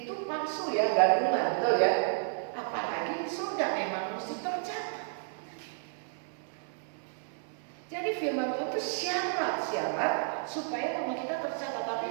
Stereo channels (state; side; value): silent; left; 57 dB below the other